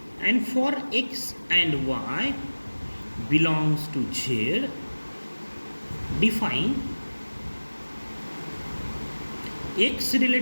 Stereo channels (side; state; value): both; inverted; correlation -1.00